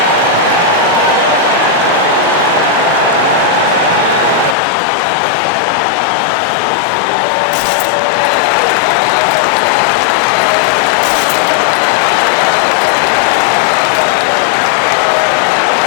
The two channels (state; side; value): drops out; right; at 4.5 s